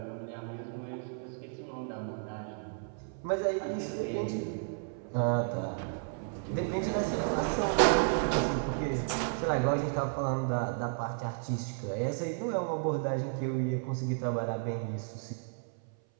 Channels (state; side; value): silent; left; 56 dB below the other